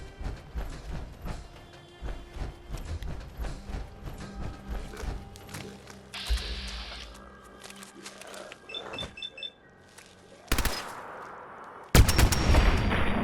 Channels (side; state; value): both; identical; correlation 1.00